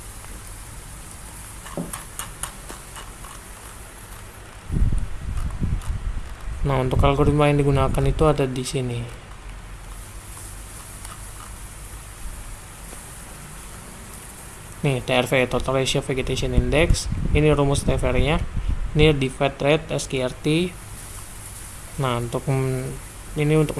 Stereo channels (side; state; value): both; identical; correlation 1.00